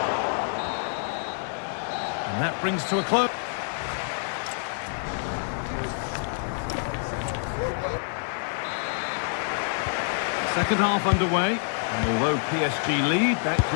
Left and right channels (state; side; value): silent; right; 60 dB below the other